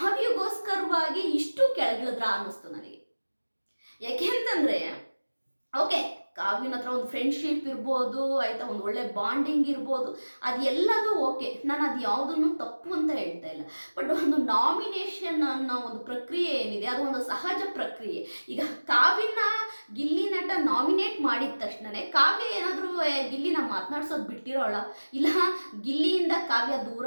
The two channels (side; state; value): both; inverted; correlation -1.00